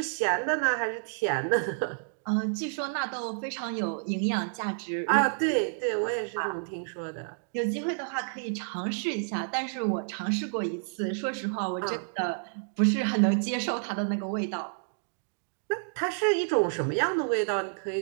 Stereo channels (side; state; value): left; silent; digital silence